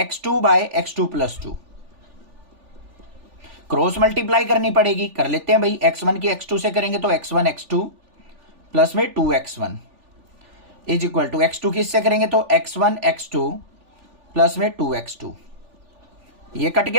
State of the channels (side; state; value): left; late; 3.4 ms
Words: by x2 plus 2। Cross multiply करनी पड़ेगी, कर लेते हैं भाई। x1 की x2 से करेंगे तो x1 x2 प्लस में 2x1 is equal to x2 की इससे करेंगे तो x1 x2 प्लस में 2x2। ये कट